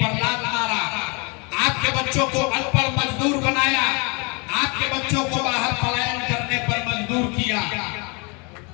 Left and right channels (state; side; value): quieter; right; 30.9 dB